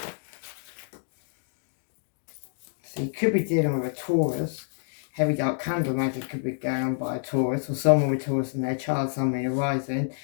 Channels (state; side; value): silent; right; digital silence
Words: So you could be dealing with a Taurus. Heavy dark candle magic could be going on by a Taurus, or someone with Taurus in their chart, someone arising.